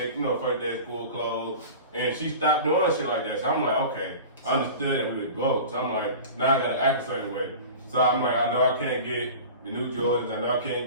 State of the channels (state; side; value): inverted; both; correlation -0.36